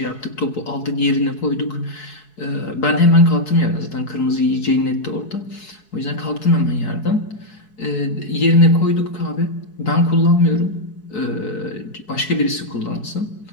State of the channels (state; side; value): late; right; 4.7 ms